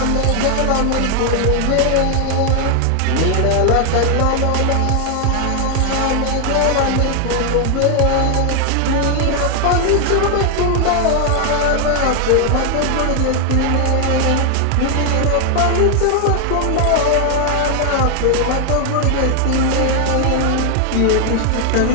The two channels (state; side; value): different; both; correlation 0.01